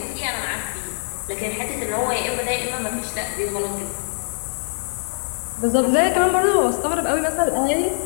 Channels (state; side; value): silent; right; 64 dB below the other